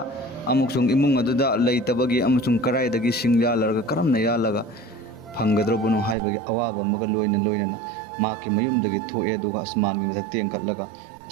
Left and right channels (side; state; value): left; drops out; at 6.2 s